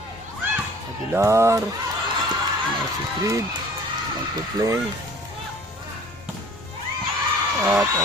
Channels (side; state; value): both; normal; correlation 0.49